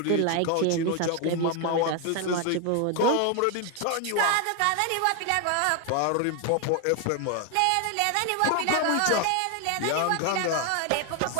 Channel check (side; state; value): both; different; correlation 0.01